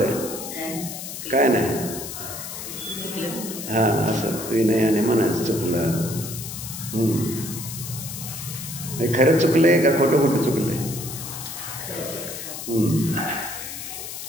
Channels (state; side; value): noise; left; hiss, 8 dB below the sound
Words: आहे? काय नाही. हां, असं विनयाने म्हणायचं चुकलं. खरंच चुकलंय का खोटं खोटं चुकलंय?